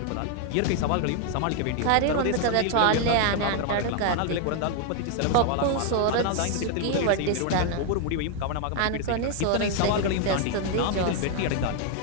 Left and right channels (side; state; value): both; different; correlation 0.00